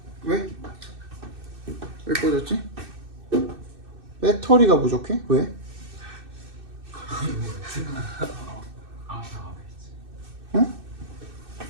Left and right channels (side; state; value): left; late; 2.6 ms